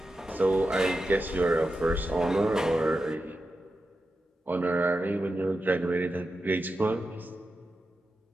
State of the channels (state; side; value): normal; both; correlation 0.90